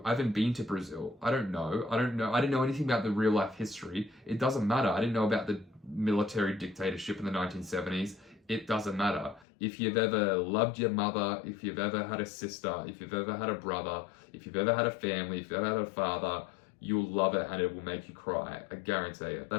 been to Brazil. I don't know. I didn't know anything about the real life history. It doesn't matter. I didn't know about the military dictatorship in the 1970s. It doesn't matter. If you've ever loved your mother, if you've ever had a sister, if you've ever had a brother, if you've ever had a family, if you've ever had a father, you'll love it and it will make you cry. I guarantee it.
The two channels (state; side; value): drops out; right; at 9.5 s